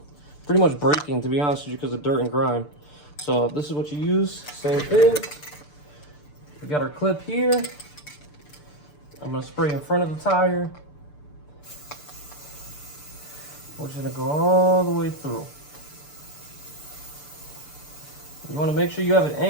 pretty much breaking, to be honest with you, because of dirt and grime. So this is what you use. Same thing. We got our clip here. I'm gonna spray in front of the tire. We're just gonna go all the way through. You want to make sure you have it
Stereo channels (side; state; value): right; late; 6.8 ms